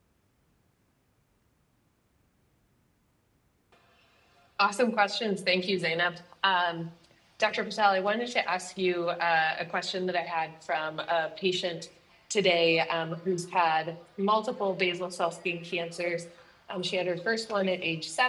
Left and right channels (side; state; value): both; identical; correlation 1.00